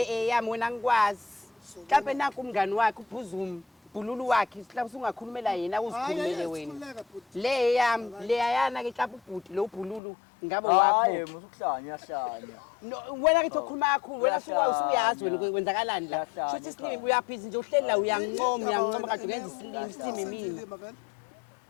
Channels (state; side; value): drops out; right; at 10.0 s